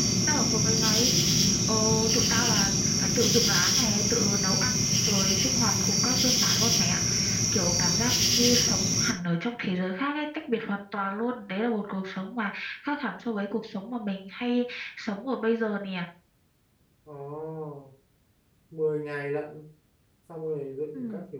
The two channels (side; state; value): both; identical; correlation 1.00